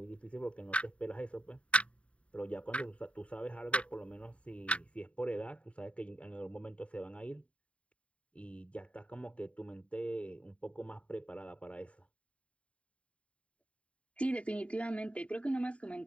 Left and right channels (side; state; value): right; late; 0.062 ms